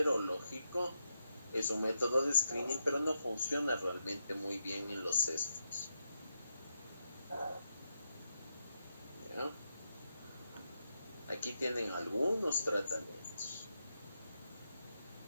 es un método de screening, pero no funciona realmente muy bien en los cestos. ¿Ya? Aquí tienen algunos tratamientos.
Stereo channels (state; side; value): inverted; both; correlation -0.84